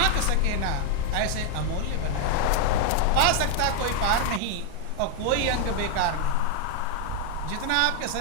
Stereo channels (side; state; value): both; different; correlation 0.00